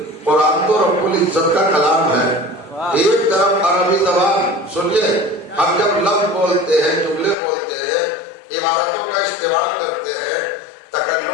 قرآن تو رب العزت کا کلام ہے. ایک طرف عربی زبان سنیے، ہم جب لفظ بولتے ہیں، جملے بولتے ہیں، عبارتوں کا استعمال کرتے ہیں،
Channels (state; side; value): drops out; right; at 7.4 s